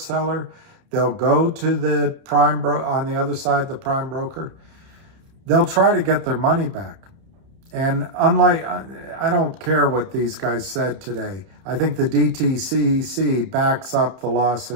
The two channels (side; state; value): left; late; 31 ms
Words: They'll go to the prime on the other side, the prime broker. They'll try to get their money back. And unlike, I don't care what these guys said today. I think the DTCC backs up the